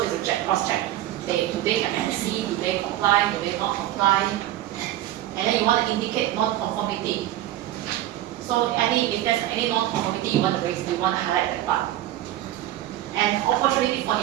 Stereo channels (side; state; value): left; quieter; 13.9 dB